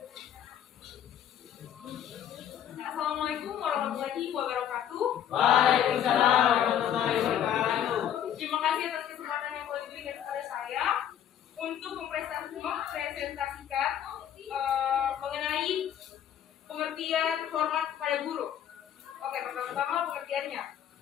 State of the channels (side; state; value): right; quieter; 10.0 dB